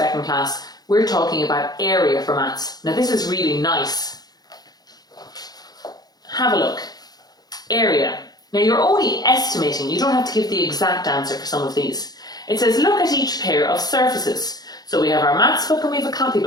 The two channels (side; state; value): right; late; 0.19 ms